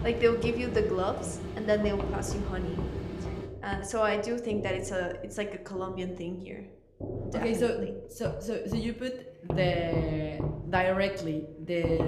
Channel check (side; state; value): both; identical; correlation 1.00